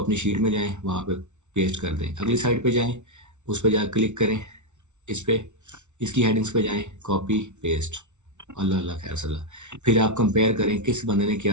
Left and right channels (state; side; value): late; left; 0.83 ms